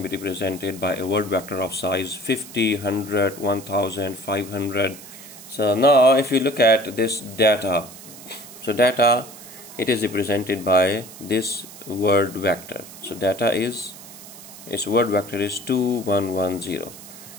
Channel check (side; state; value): right; noise; hiss, 17 dB below the sound